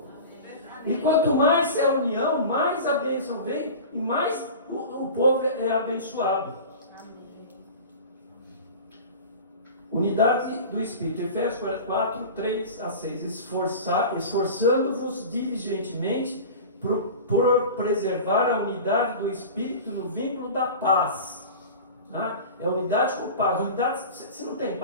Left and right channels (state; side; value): inverted; both; correlation -0.34